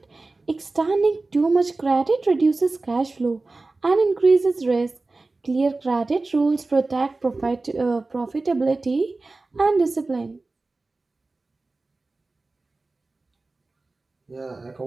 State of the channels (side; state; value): left; quieter; 3.4 dB